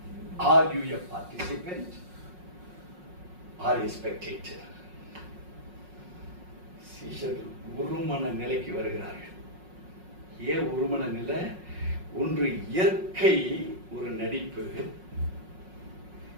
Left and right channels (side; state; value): left; late; 5.5 ms